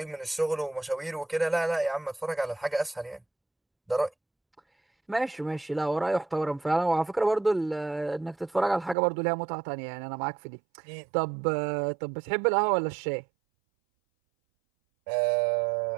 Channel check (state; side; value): drops out; left; at 9.0 s